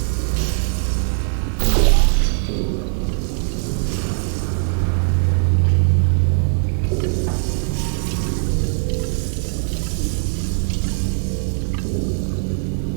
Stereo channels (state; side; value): silent; left; 65 dB below the other